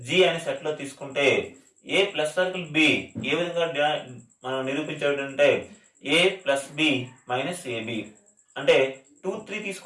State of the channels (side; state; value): both; identical; correlation 1.00